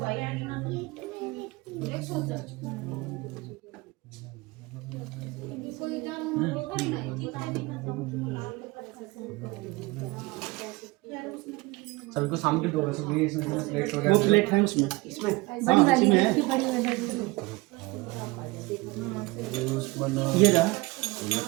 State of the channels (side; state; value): left; quieter; 23.2 dB